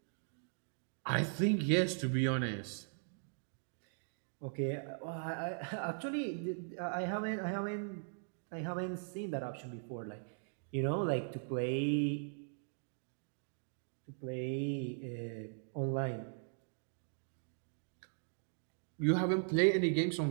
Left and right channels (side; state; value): left; silent; digital silence